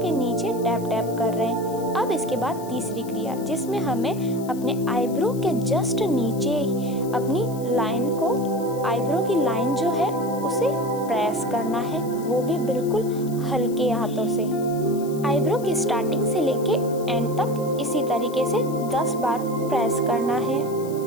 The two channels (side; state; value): left; noise; hiss, 19 dB below the sound